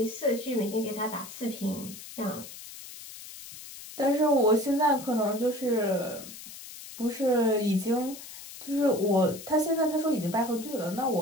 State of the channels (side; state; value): left; noise; hiss, 14 dB below the sound